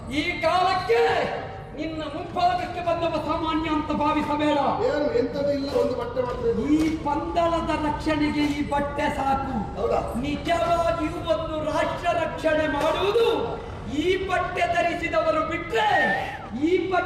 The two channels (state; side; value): identical; both; correlation 1.00